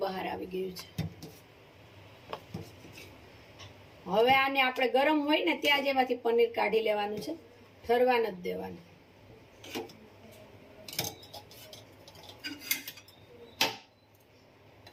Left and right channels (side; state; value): both; identical; correlation 1.00